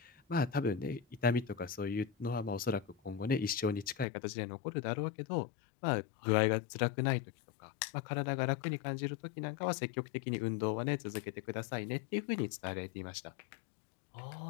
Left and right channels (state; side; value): drops out; right; at 4.0 s